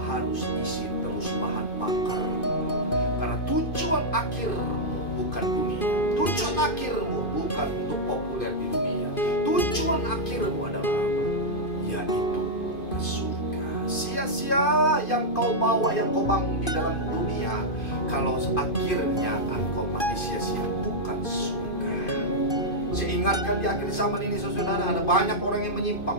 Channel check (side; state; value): right; late; 2.5 ms